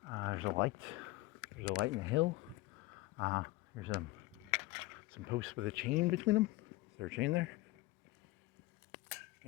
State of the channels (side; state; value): right; quieter; 19.8 dB